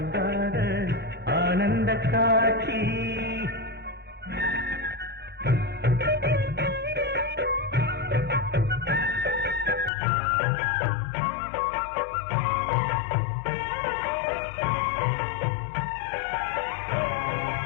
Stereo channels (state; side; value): drops out; right; at 9.9 s